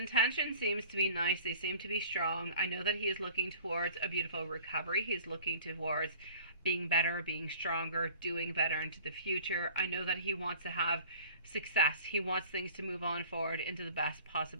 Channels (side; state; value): both; inverted; correlation -0.47